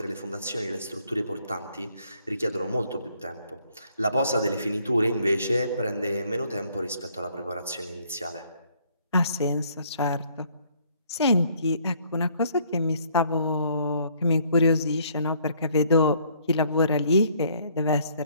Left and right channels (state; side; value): inverted; both; correlation -0.64